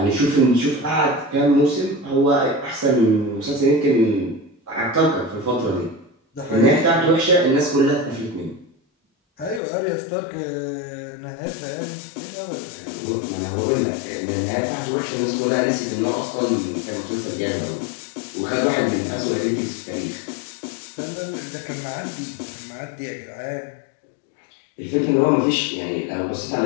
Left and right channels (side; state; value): right; drops out; at 9.6 s